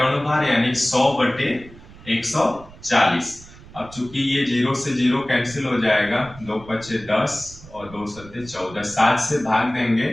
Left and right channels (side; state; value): right; noise; rumble, 20 dB below the sound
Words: अणुभार यानी 100 बटे 140। अब चूंकि ये 0 से 0 कैंसिल हो जाएगा, 2 पचे 10 और 2 सत्ते 14, 7 से भाग देंगे